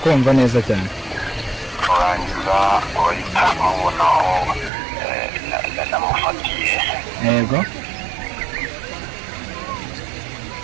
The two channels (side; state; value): left; drops out; at 4.7 s